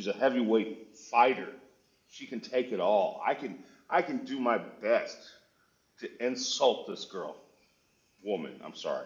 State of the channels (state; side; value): identical; both; correlation 1.00